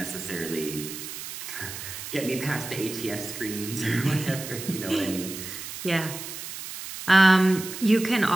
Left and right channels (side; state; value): right; noise; hiss, 9 dB below the sound